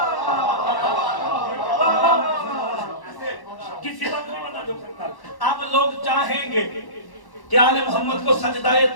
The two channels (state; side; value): late; right; 1.1 ms